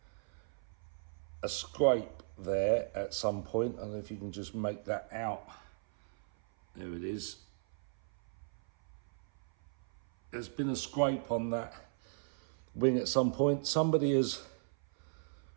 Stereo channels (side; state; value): left; silent; 54 dB below the other